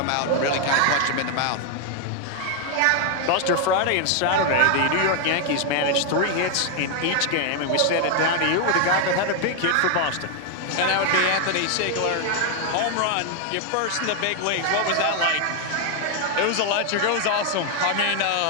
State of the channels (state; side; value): different; both; correlation 0.00